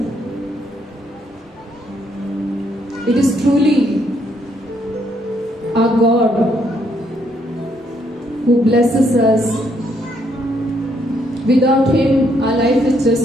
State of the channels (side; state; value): both; normal; correlation 0.72